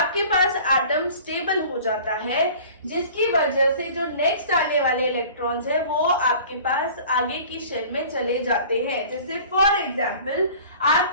पास एटम स्टेबल हो जाता है, जिसकी वजह से जो नेक्स्ट आने वाले इलेक्ट्रॉन्स है वो आपके पास आगे की शेल में चले जाते हैं। जैसे फॉर एग्जांपल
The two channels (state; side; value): inverted; both; correlation -0.45